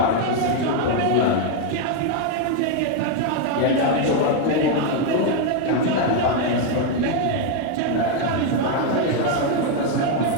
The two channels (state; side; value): different; both; correlation 0.01